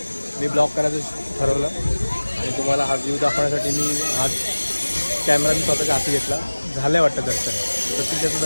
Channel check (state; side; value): inverted; both; correlation -1.00